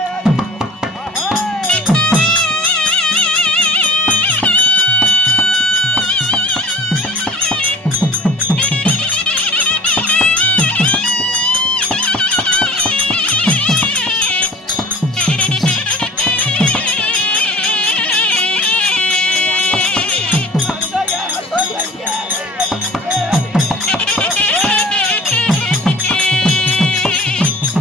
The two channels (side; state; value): both; normal; correlation 0.43